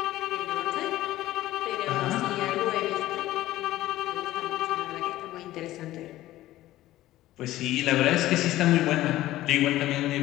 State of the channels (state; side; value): quieter; right; 15.4 dB